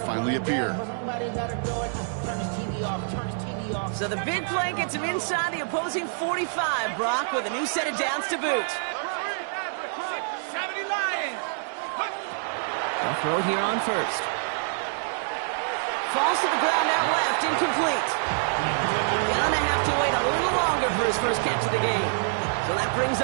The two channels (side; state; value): left; silent; 61 dB below the other